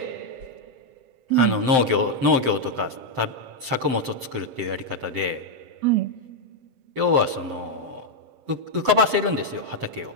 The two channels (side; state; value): left; late; 7.7 ms